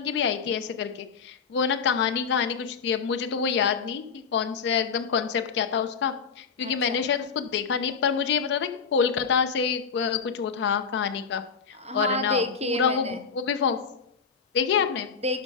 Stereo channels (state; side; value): quieter; right; 6.0 dB